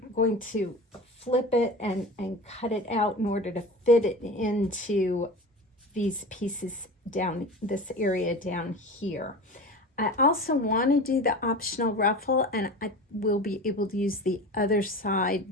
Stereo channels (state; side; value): normal; both; correlation 0.33